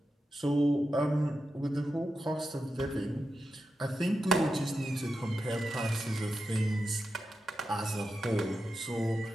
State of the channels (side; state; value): both; normal; correlation 0.89